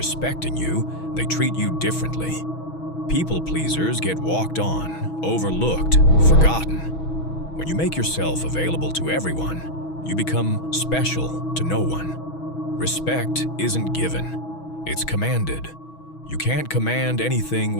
you, they treat you differently. People pleasers get walked on, overlooked, forgotten. When you make yourself available to everyone, you become special to no one. Respect isn't given, it's commanded. You can't command anything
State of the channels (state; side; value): late; right; 6.2 ms